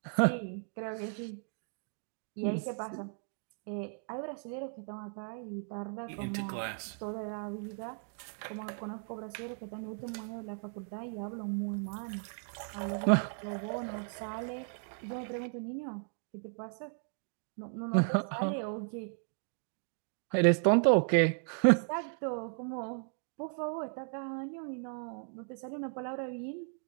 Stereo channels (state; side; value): silent; left; 54 dB below the other